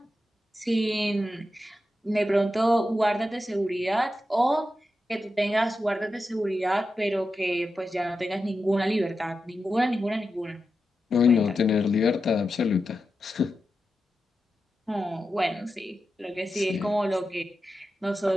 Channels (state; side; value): normal; both; correlation 0.90